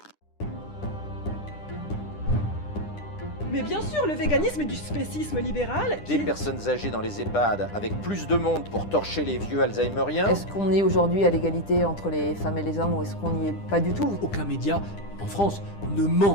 Mais bien sûr, le véganisme est du spécisme libéral. Des personnes âgées dans les EHPAD avec plus de monde pour torcher les vieux alzheimeriens. Est-ce qu'on est aujourd'hui à l'égalité entre les femmes et les hommes ou est-ce qu'on n'y est pas du tout? Aucun média en France ne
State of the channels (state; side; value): late; right; 10 ms